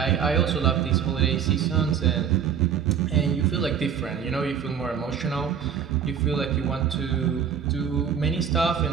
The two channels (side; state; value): left; quieter; 7.8 dB